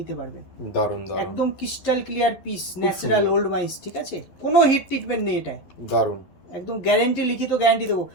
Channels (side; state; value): right; late; 11 ms